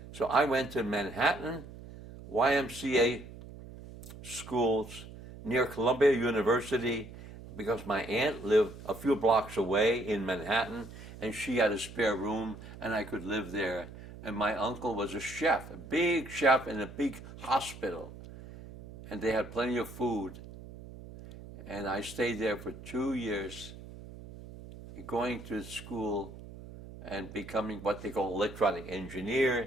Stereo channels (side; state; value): right; noise; hum, 15 dB below the sound